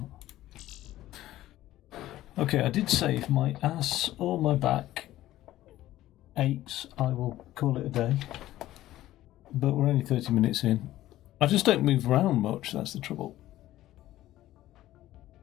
Okay, I did say if my ass or my back aches, I will call it a day. But we're only 30 minutes in. I just don't move around much, that's the trouble.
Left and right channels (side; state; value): right; quieter; 14.7 dB